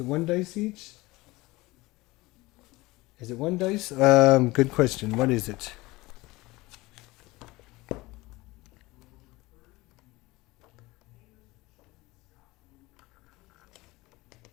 1 dice each? Is it 1 dice? Good question. What is it?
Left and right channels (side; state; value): right; quieter; 20.9 dB